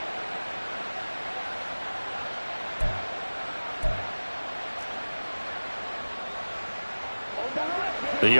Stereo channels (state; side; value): inverted; both; correlation -1.00